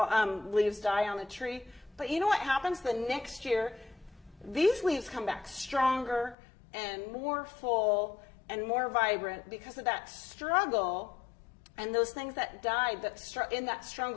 leaves die on the tree. But you know what happens the next year? These leaves come back stronger and more full and more vibrant because of that struggle and those things that died. In that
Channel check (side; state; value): right; drops out; at 6.4 s